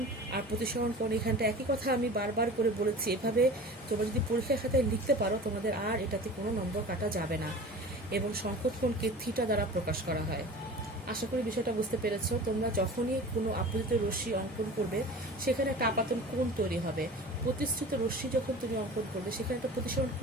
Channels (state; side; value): normal; both; correlation 0.38